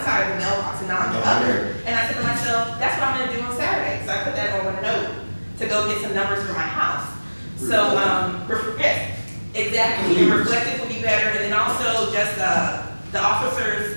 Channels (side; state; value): both; inverted; correlation -1.00